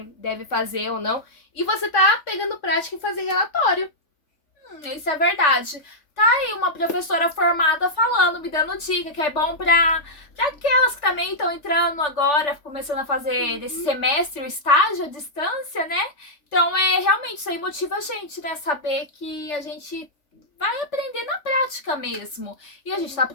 deve fazer ou não. E você tá pegando prática em fazer relatório. Isso é verdade. Tá aí uma professora formada falando, me dando dica, que é bom pra aquelas que também estão entrando agora, começando a fazer desse semestre o estágio à distância, né? Então, realmente, isso aí motiva a gente, né? Saber que a gente vai aprender na prática mesmo. E a gente tá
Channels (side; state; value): right; late; 3.4 ms